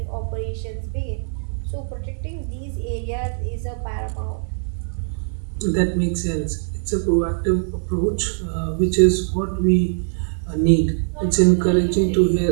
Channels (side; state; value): left; silent; 55 dB below the other